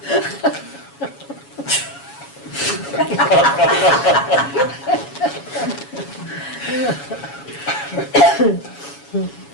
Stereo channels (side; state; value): right; late; 7.2 ms